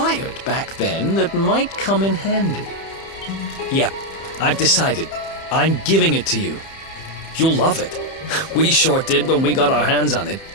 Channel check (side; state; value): right; late; 30 ms